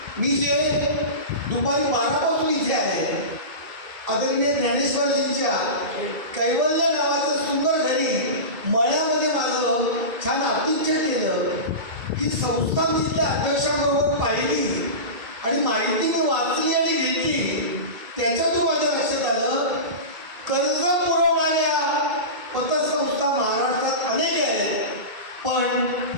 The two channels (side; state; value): left; late; 2.2 ms